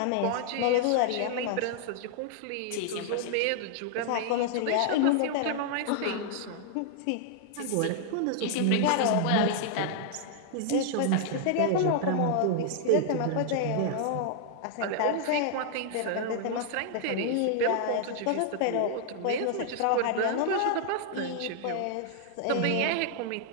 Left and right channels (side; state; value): both; different; correlation -0.01